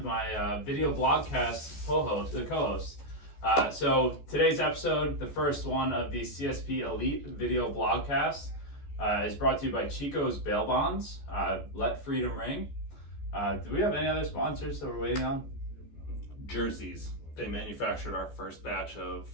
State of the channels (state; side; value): late; right; 14 ms